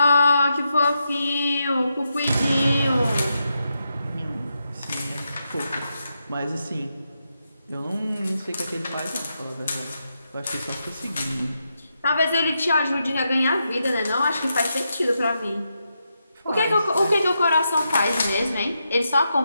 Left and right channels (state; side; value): inverted; both; correlation -0.85